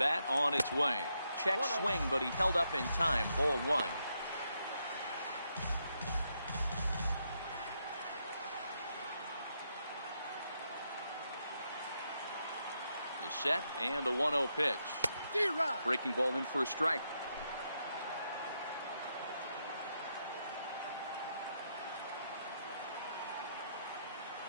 on its way. Check swing, but he held up in time. Ball 1. The set and the 1-0 pitch. Breaking ball in for a strike.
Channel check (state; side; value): inverted; both; correlation -0.80